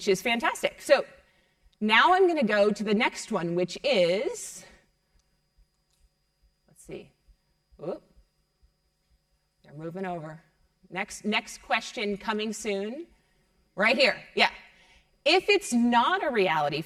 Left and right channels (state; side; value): identical; both; correlation 1.00